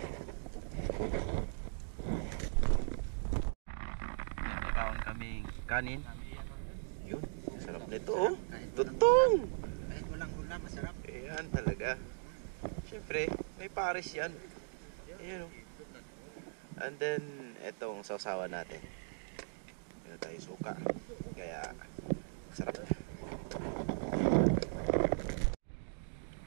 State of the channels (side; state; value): left; silent; digital silence